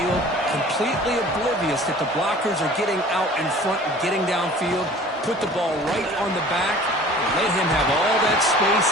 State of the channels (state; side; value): normal; both; correlation 0.46